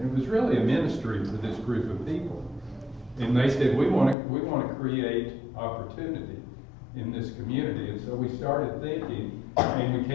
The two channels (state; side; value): drops out; right; at 4.2 s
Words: it was really a ministry for this group of people. And they said, we want to create opportunity in this community. And so we started thinking, and we